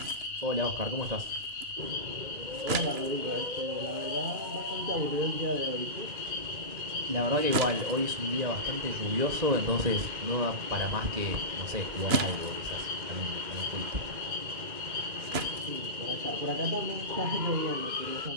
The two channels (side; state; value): left; late; 2.4 ms